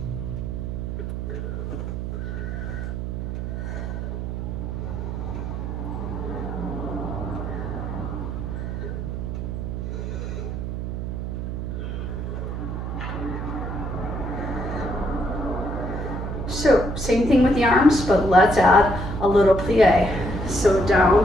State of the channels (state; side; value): noise; right; hum, 4 dB below the sound